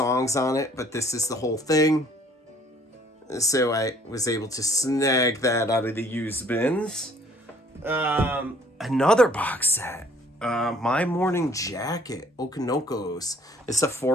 on it, but this is the whole thing. So I was able to snag that out of the used bins. Another box set. My Morning Jacket, Okanokos. It's a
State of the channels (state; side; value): normal; both; correlation 0.58